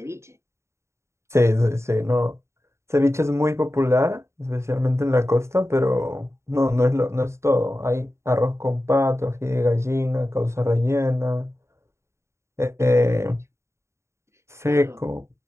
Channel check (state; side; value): late; left; 0.13 ms